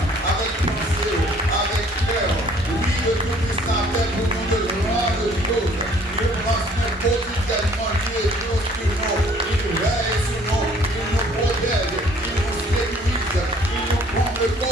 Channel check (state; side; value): normal; both; correlation 0.57